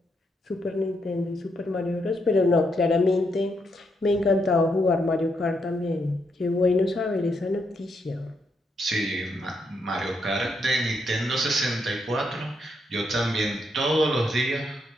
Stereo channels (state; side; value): normal; both; correlation 0.78